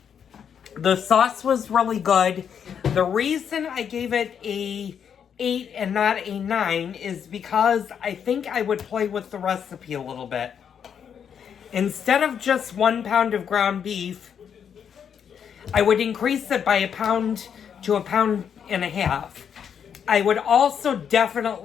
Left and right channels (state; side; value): quieter; right; 7.9 dB